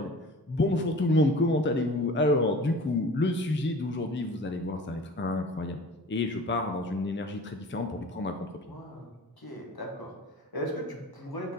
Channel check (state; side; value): normal; both; correlation 0.42